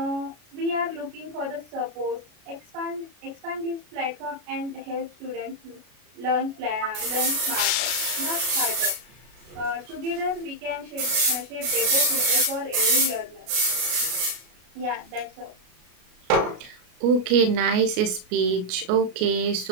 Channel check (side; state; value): left; late; 33 ms